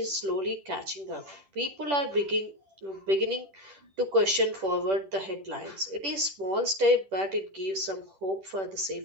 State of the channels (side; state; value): left; late; 10 ms